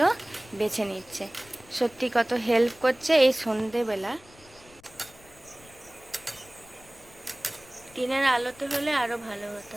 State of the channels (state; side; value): noise; left; rumble, 24 dB below the sound